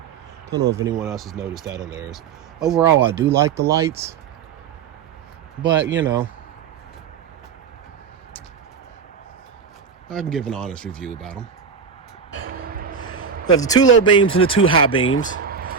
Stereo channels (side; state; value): left; quieter; 6.4 dB